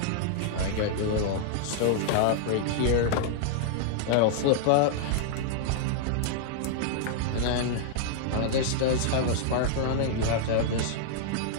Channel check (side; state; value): both; different; correlation -0.01